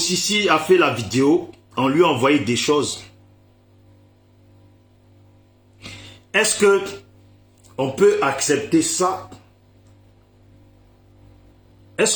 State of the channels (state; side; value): identical; both; correlation 1.00